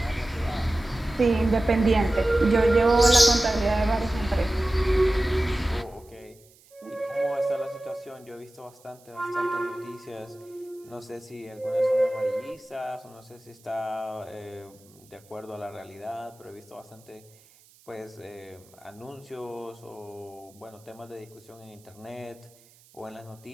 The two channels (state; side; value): noise; right; hiss, 28 dB below the sound